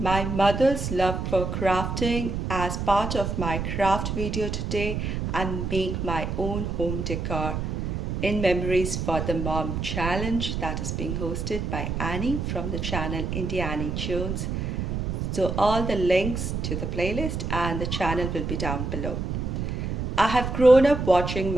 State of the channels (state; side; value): noise; right; rumble, 3 dB below the sound